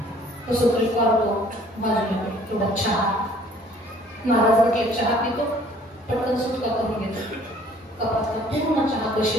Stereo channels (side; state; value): both; normal; correlation 0.56